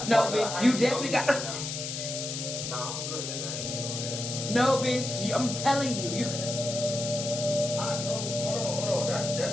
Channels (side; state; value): left; noise; hiss, 5 dB below the sound